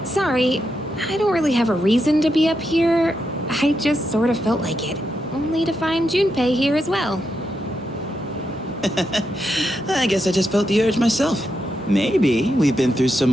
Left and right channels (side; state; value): both; normal; correlation 0.84